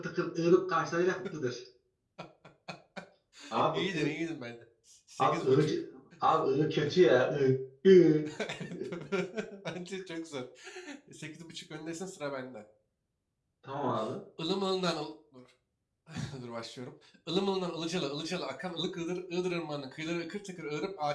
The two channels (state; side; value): identical; both; correlation 1.00